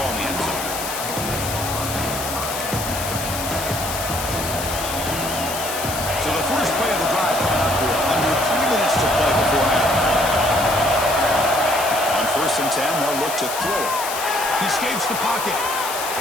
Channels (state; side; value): noise; left; hiss, 6 dB below the sound